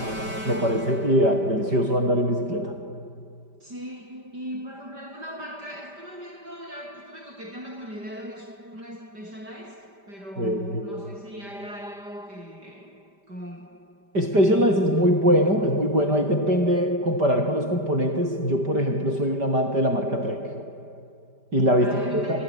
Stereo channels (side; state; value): left; late; 5.1 ms